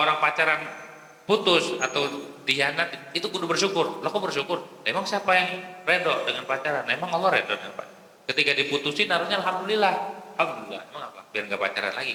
orang pacaran putus atau dikhianat, itu kudu bersyukur. Lah kok bersyukur? Emang siapa yang redho dengan pacaran? Emang Allah redho dengan pacaran? Ketika diputusin harusnya alhamdulillah. Emang apa? Biar nggak pacaran lagi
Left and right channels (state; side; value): identical; both; correlation 1.00